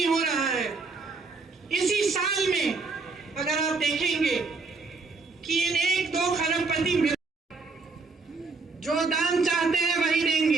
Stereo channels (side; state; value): left; quieter; 4.1 dB